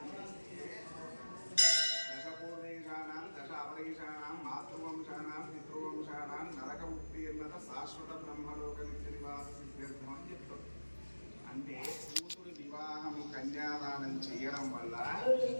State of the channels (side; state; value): both; inverted; correlation -1.00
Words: చేస్తే దశపూర్వేశానాం దశ అవరేశానాం మాతృవంశానాం పితృవంశానాం నరకముక్తి అన్నత శాశ్వత బ్రహ్మలోక నిత్య నివాస సిద్ధార్థం అని చెప్తారు. అంటే కూతురి వివాహం కన్యాదానం చేయడం వల్ల